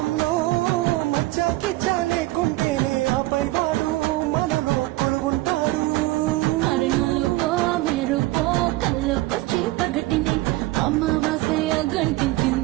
మచ్చాకి చాలేకుంటేనే ఆపై వాడు మనలో పొడుగుంటాడు అరణలుపో మెరుపో కళ్ళకొచ్చి పగటిని అమావాస్య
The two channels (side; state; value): left; quieter; 19.1 dB